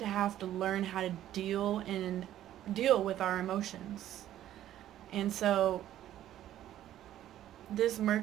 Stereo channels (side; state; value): left; quieter; 12.4 dB